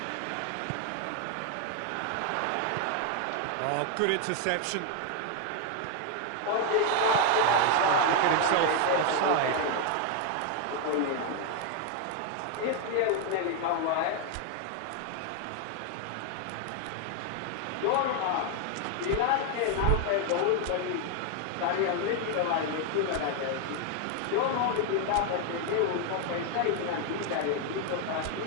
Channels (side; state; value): both; different; correlation 0.01